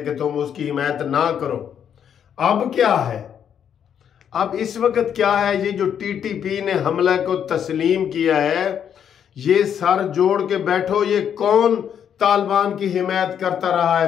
कि तुम उसकी हिमायत ना करो। अब क्या है? अब इस वक्त क्या है? ये जो टीटीपी ने हमला को तस्लीम किया है, ये सर जोड़ के बैठो, ये कौन तालिबान की हिमायत करता रहा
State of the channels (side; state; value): right; quieter; 8.6 dB